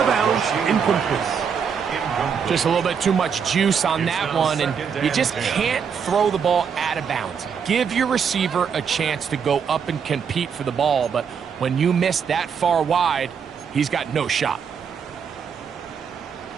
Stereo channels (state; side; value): quieter; left; 6.8 dB